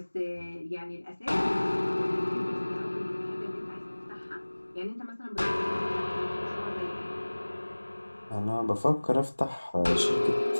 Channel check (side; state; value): both; inverted; correlation -1.00